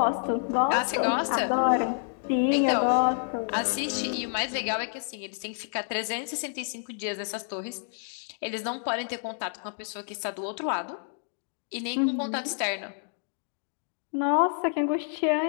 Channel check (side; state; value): right; silent; 58 dB below the other